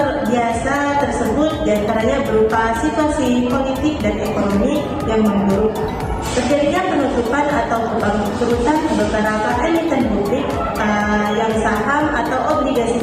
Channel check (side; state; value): both; identical; correlation 1.00